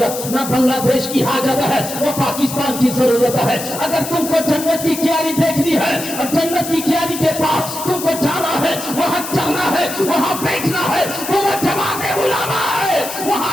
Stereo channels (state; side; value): noise; left; hiss, 8 dB below the sound